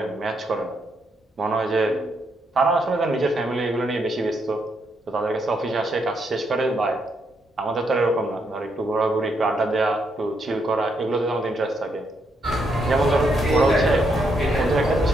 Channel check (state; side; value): normal; both; correlation 0.77